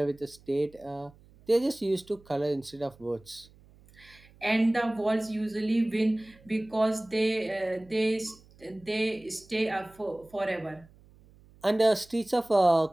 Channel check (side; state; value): right; noise; hum, 26 dB below the sound